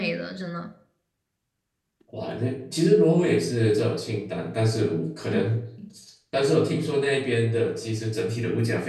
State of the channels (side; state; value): both; identical; correlation 1.00